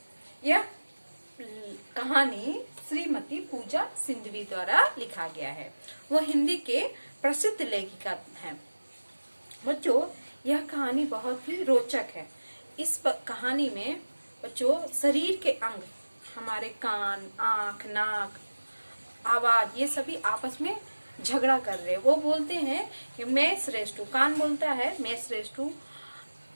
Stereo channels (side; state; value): both; inverted; correlation -1.00